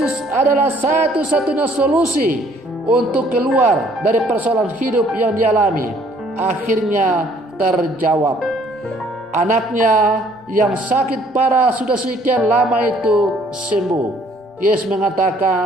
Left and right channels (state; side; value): normal; both; correlation 0.61